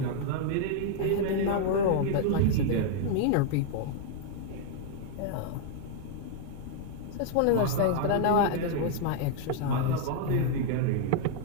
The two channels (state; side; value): different; both; correlation -0.01